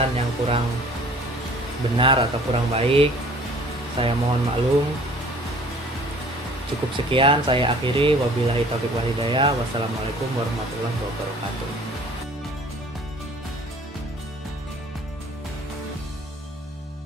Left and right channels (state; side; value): normal; both; correlation 0.51